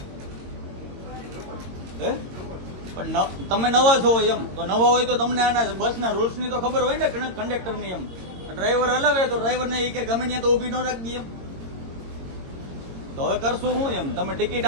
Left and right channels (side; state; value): left; late; 22 ms